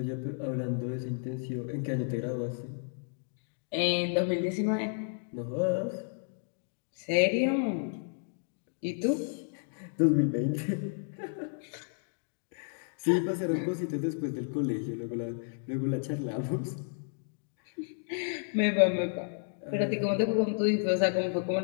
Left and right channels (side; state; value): right; silent; digital silence